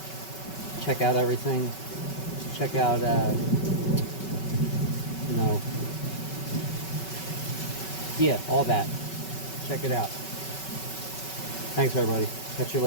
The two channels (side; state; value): right; late; 5.3 ms